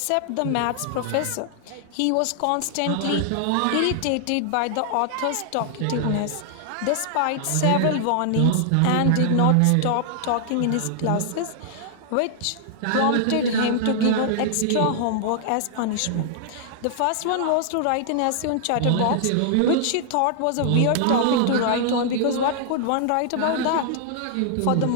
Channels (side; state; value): both; different; correlation -0.01